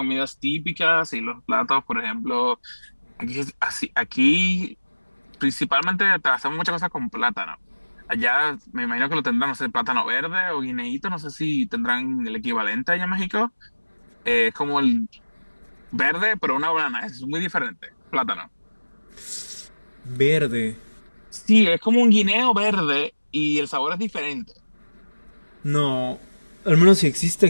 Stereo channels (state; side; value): inverted; both; correlation -1.00